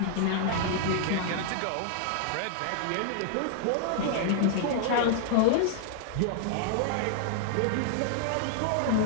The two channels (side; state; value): both; different; correlation 0.00